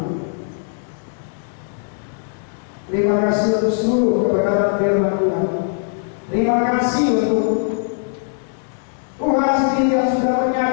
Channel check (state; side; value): silent; right; digital silence